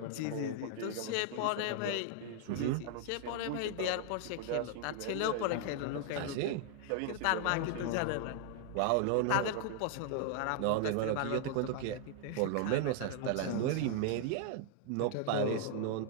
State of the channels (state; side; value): different; both; correlation 0.00